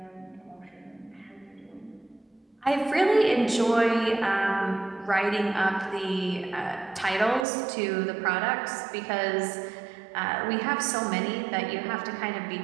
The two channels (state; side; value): drops out; left; at 7.5 s